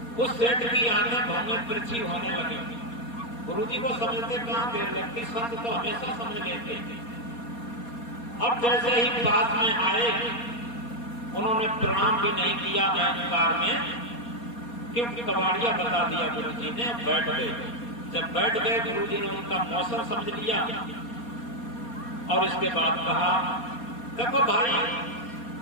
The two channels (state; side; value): late; right; 4.2 ms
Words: उस सेठ की आंखें भौंगे तिरछी होने लगी। गुरु जी को समझते कहां देर लगती, संत तो हमेशा समझ लेते। अब जैसे ही पास में आए उन्होंने प्रणाम भी नहीं किया अहंकार में, क्योंकि कबाड़िया बता दिया गुरु जी ने। बैठ गए। जब बैठ गए गुरु जी ने उनका मौसम समझ लिया और इसके बाद कहा, देखो भाई,